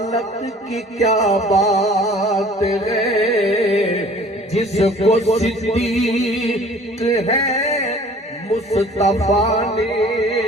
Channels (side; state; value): both; normal; correlation 0.49